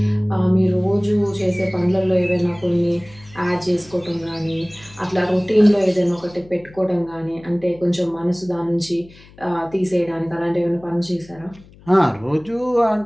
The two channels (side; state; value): left; noise; hum, 24 dB below the sound